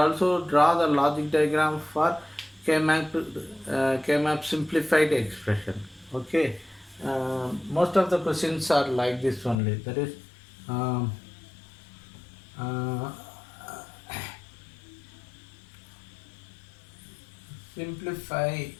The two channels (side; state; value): right; drops out; at 9.6 s